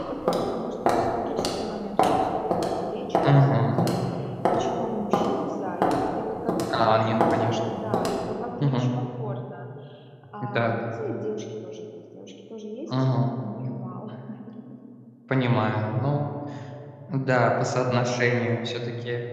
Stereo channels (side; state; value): both; identical; correlation 1.00